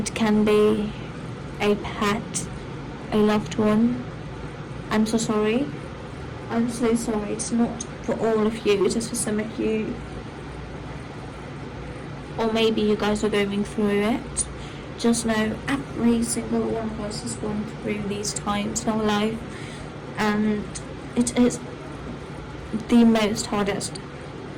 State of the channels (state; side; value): identical; both; correlation 1.00